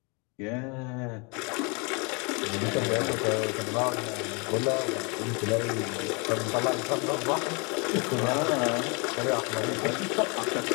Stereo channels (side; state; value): right; quieter; 32.1 dB